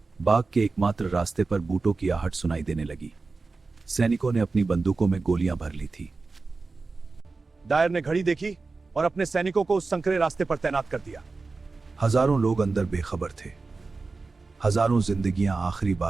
बाग के एकमात्र रास्ते पर बूटों की आहट सुनाई देने लगी। सैनिकों ने अपनी बंदूकों में गोलियां भर ली थी। डायर ने घड़ी देखी और अपने सैनिकों को उस संकरे रास्ते पर तैनात कर दिया। हजारों लोग अंदर बेखबर थे। हजारों जिंदगियां आखिरी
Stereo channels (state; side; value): quieter; left; 3.9 dB